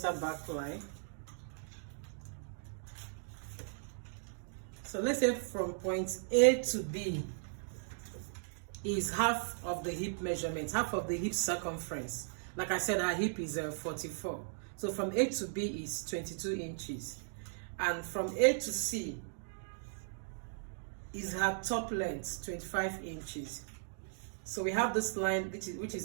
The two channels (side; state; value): left; silent; digital silence